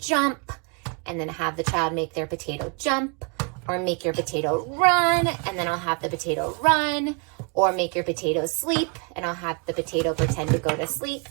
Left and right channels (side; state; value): left; quieter; 34.8 dB